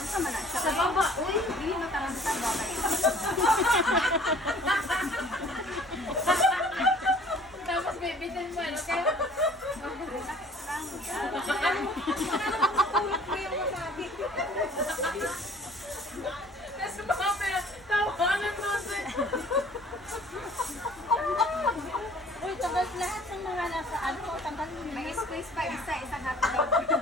man na siya. Sa baba, uy. Hindi mo tanong sa baba. Tapos bibitin mo, ano kaya? Relax lang. Ulot mo yung masabi. Tapos mga tawanan mo sa... Uy, tagal lahat ng mga nasa ano, tanggalin mo. May space pa isa, isang hotdog.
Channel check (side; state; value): both; normal; correlation 0.52